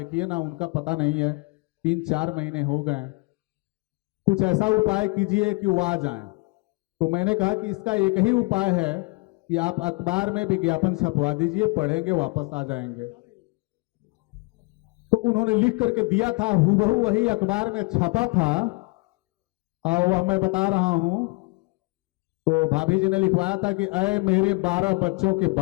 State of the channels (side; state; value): right; quieter; 28.3 dB